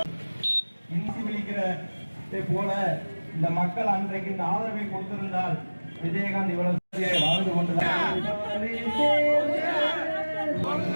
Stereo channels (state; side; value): inverted; both; correlation -1.00